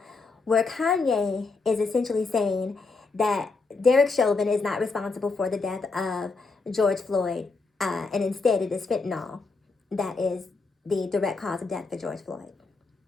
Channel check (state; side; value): quieter; right; 4.1 dB